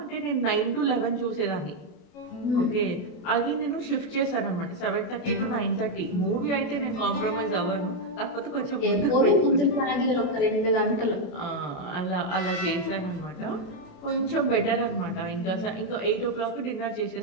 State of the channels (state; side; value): late; right; 28 ms